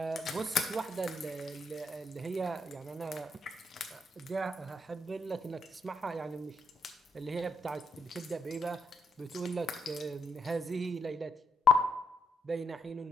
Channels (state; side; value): normal; both; correlation 0.78